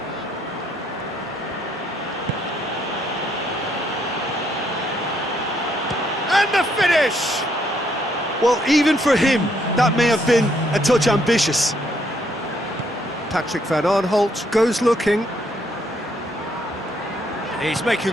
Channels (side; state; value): both; normal; correlation 0.71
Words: And the finish! Well, even for him, that may have been a touch ambitious. Patrick van Aanholt goes looking. He's